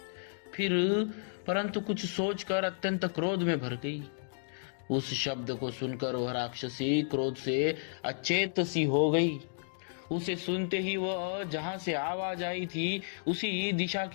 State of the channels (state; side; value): silent; right; digital silence